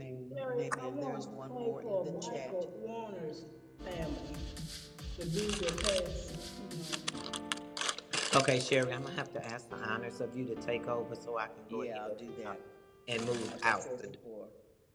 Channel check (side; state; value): both; identical; correlation 1.00